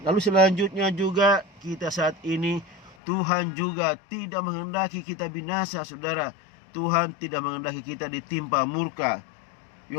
selanjutnya juga kita saat ini, Tuhan juga tidak menghendaki kita binasa, saudara. Tuhan tidak menghendaki kita ditimpa murka.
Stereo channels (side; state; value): right; drops out; at 3.0 s